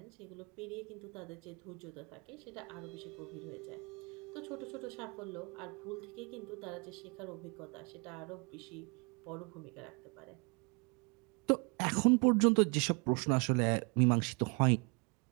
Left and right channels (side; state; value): left; quieter; 33.3 dB